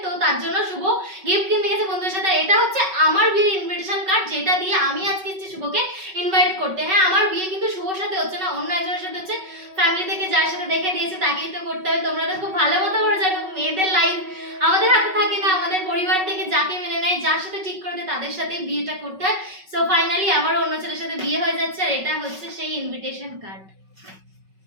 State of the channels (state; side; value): late; left; 5.3 ms